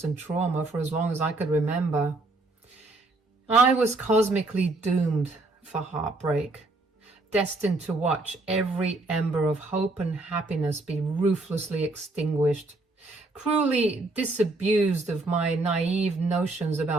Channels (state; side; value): quieter; left; 3.1 dB